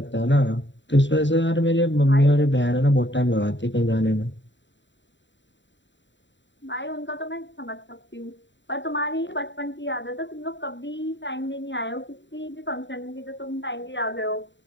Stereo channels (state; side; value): late; right; 0.53 ms